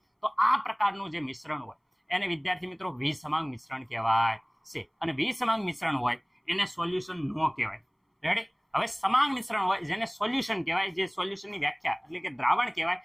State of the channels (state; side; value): identical; both; correlation 1.00